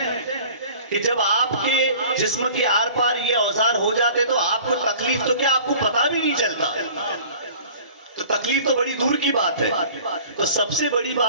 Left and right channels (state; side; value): inverted; both; correlation -0.45